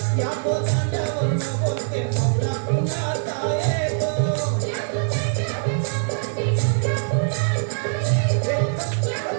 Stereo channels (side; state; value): left; silent; digital silence